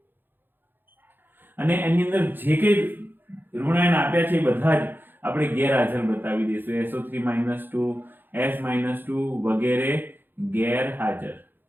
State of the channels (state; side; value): late; left; 0.096 ms